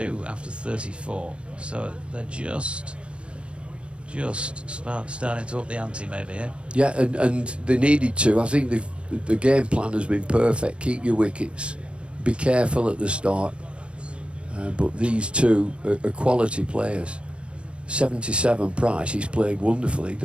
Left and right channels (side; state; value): left; late; 0.058 ms